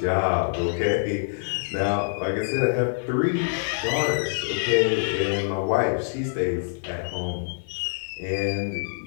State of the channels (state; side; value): silent; right; 55 dB below the other